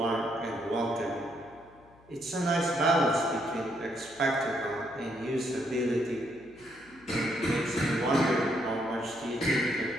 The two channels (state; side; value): noise; left; hum, 27 dB below the sound